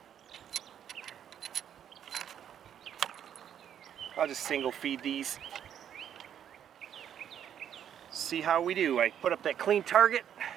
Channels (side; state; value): left; quieter; 9.4 dB